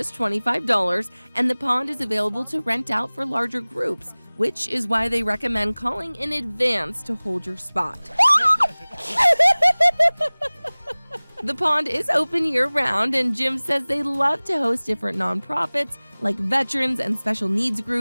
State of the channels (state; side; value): inverted; both; correlation -1.00